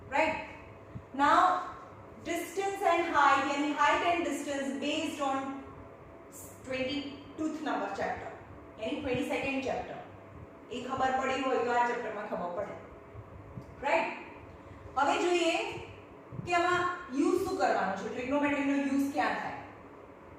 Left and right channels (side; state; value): both; identical; correlation 1.00